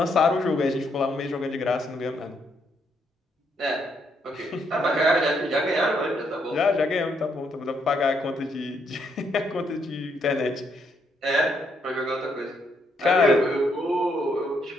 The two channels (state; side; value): normal; both; correlation 0.75